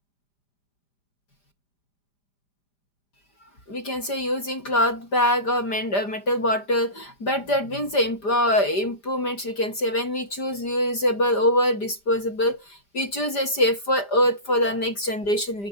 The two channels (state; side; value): late; right; 5.0 ms